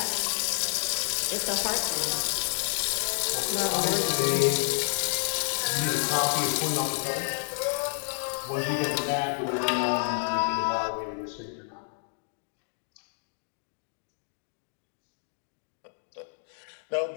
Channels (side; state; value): right; silent; digital silence